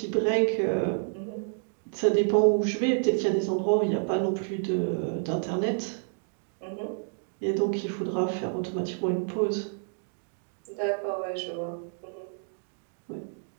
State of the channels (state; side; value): silent; left; digital silence